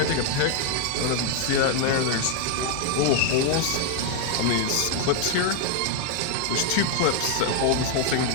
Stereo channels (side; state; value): both; different; correlation 0.00